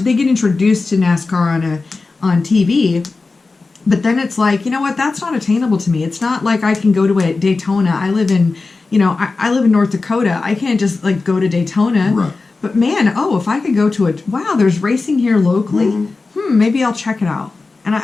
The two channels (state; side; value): quieter; right; 3.8 dB